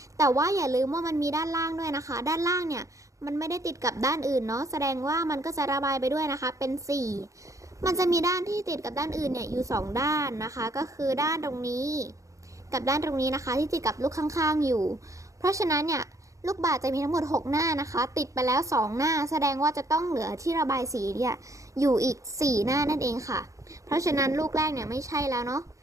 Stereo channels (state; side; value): late; left; 0.15 ms